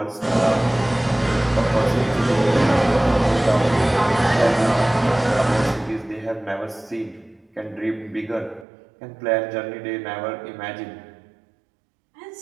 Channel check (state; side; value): drops out; left; at 8.7 s